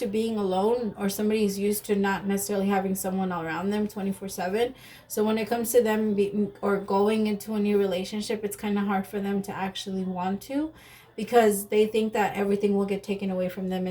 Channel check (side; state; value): both; identical; correlation 1.00